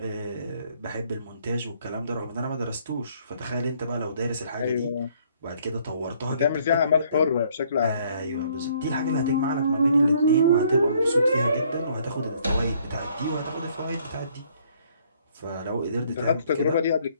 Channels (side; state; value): both; inverted; correlation -0.64